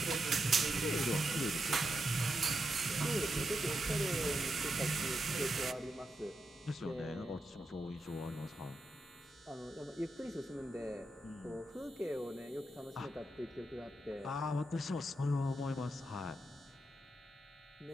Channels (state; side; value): normal; both; correlation 0.86